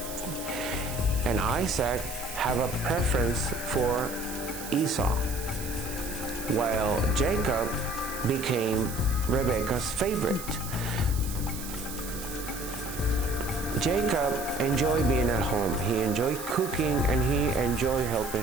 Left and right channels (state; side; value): noise; right; hiss, 10 dB below the sound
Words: And Isaac had a preference for Esau, while Jacob became Rebekah's favorite. Jacob enjoyed being at home. He enjoyed cooking, and he enjoyed